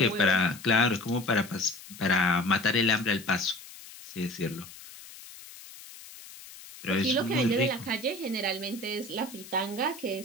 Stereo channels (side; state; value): left; noise; hiss, 17 dB below the sound